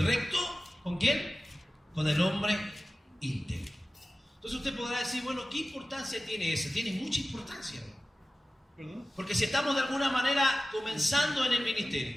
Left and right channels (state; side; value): normal; both; correlation 0.96